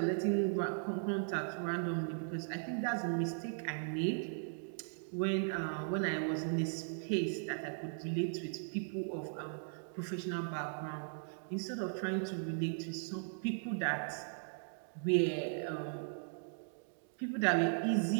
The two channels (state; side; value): silent; left; digital silence